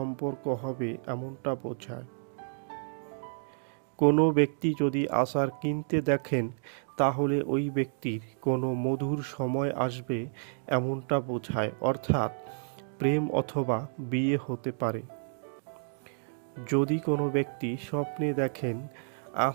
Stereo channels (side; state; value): left; silent; digital silence